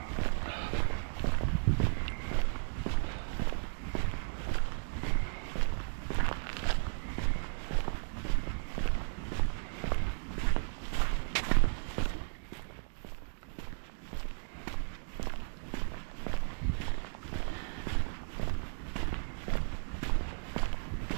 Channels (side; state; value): left; silent; digital silence